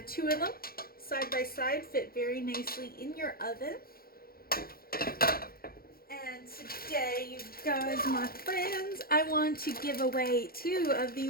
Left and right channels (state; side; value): late; right; 0.44 ms